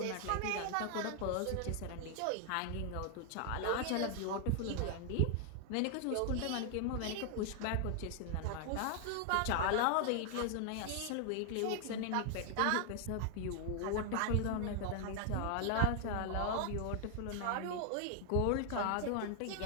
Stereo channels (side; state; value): both; different; correlation 0.00